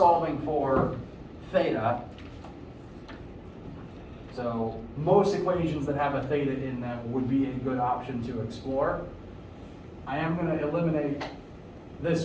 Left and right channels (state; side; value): identical; both; correlation 1.00